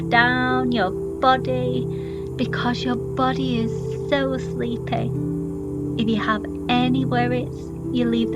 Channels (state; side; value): identical; both; correlation 1.00